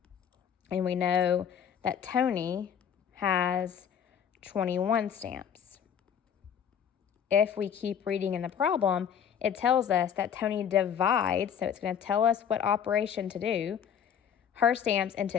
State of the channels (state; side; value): quieter; right; 8.3 dB